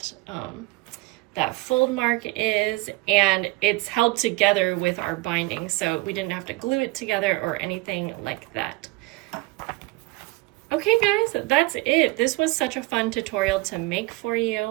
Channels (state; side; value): quieter; left; 22.9 dB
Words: that fold mark is, and it's held together with our binding, so we didn't have to glue it together or anything like that. Okay guys, that's it. This was such a fun tutorial to make for